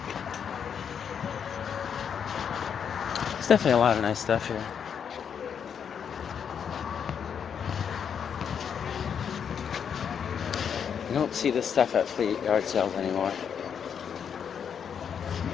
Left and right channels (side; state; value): right; quieter; 7.6 dB